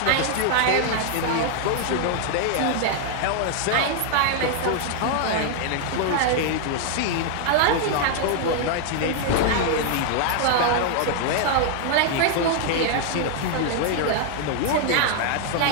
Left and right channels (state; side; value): different; both; correlation 0.00